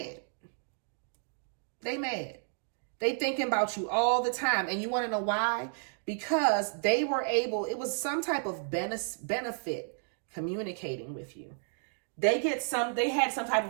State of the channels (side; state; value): left; silent; digital silence